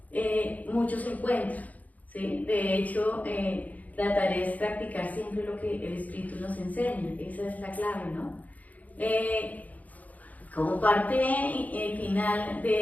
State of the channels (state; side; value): late; right; 0.076 ms